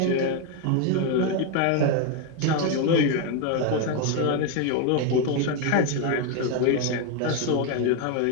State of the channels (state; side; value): different; both; correlation 0.01